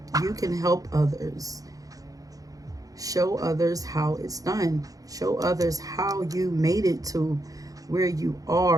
You can help others. Show others how it's done. Show others how you made it to where you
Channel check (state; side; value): late; left; 0.17 ms